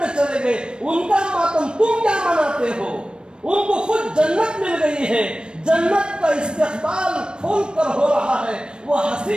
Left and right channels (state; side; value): late; left; 0.052 ms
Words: چلے گئے، ان کا ماتم تم کیا مناتے ہو؟ ان کو خود جنت مل گئی ہے، جنت کا استقبال کھول کر ہو رہا ہے، وہ